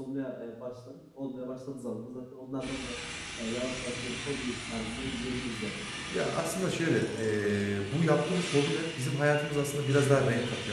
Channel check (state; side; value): identical; both; correlation 1.00